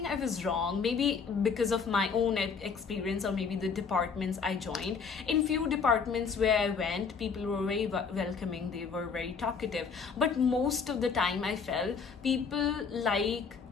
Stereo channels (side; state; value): right; quieter; 5.6 dB